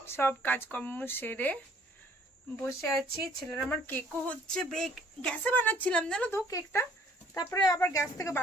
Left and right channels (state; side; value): normal; both; correlation 0.59